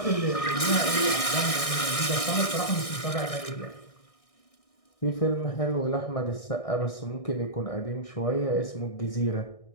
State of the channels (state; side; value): late; right; 1.6 ms